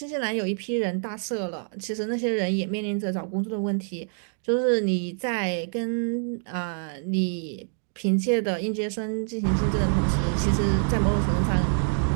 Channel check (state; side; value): silent; left; digital silence